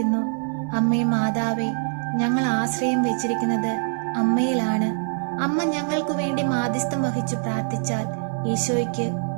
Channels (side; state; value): left; silent; 63 dB below the other